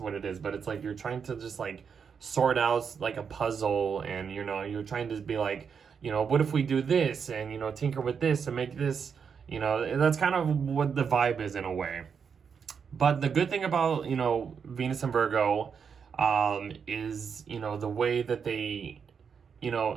it is, but it's like you're trying to just like sort out like a puzzle, and you're trying to be like, what if we do this, and tinker with this and make this, that's kind of what the vibe is in a way. But the good thing about Venus and Virgo is the way that they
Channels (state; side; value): quieter; left; 6.5 dB